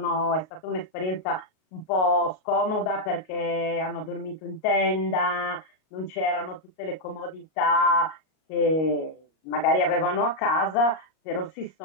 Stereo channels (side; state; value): right; late; 38 ms